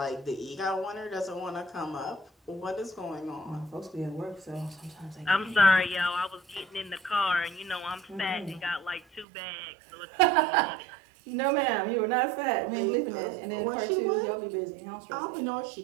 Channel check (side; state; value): left; drops out; at 9.2 s